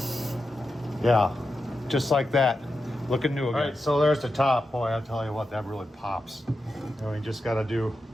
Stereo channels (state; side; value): normal; both; correlation 0.89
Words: Yeah, just like that. Looking new again. All right, so there's the top. Boy, I'll tell you what, that really pops. You know, you just gotta do